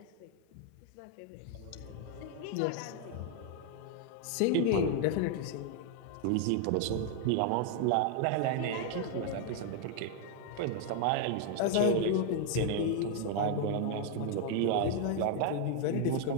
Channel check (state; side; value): different; both; correlation 0.00